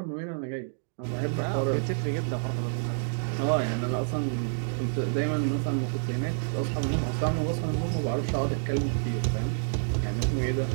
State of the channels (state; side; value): silent; left; digital silence